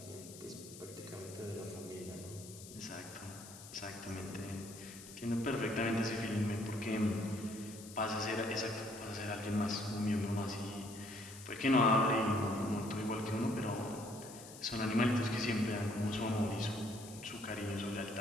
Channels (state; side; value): noise; left; hiss, 15 dB below the sound